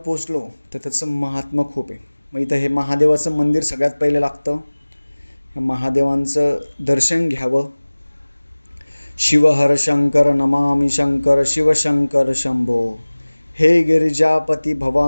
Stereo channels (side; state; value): both; inverted; correlation -1.00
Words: तर त्याचं महात्म्य खूप आहे. मग इथं हे महादेवाचं मंदिर सगळ्यात पहिले लागतं. ह्या महादेवांचं दर्शन घ्यावं. शिवहर शंकर नमामि शंकर शिवशंकर शंभो, हे गिरिजापती